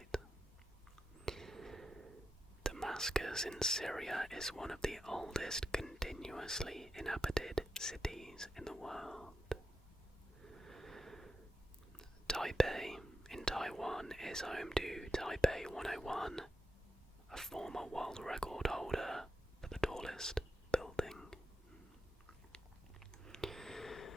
Damascus in Syria is one of the oldest continuously inhabited cities in the world. Taipei in Taiwan is home to Taipei 101, a former world record holder for the tallest building.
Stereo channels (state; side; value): normal; both; correlation 0.87